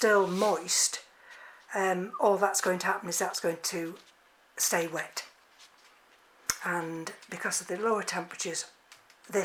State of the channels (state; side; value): identical; both; correlation 1.00